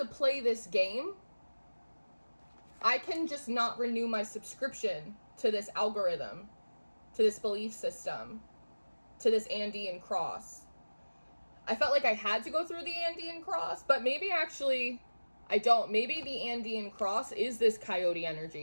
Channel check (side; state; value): both; inverted; correlation -1.00